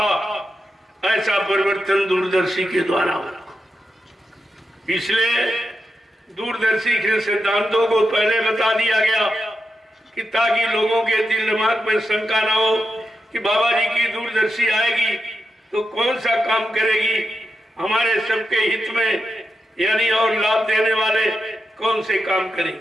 ऐसा परिवर्तन दूरदर्शी के द्वारा होगा। इसलिए दूरदर्शी के सिद्धांतों को पहले बता दिया गया कि ताकि लोगों के दिल दिमाग में शंका ना हो कि बाबा जी की दूरदर्शी आएगी तो कौन सा काम करेगी हमारे सबके हित में, यानी और लाभ देने वाले कौन से काम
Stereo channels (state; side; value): normal; both; correlation 0.88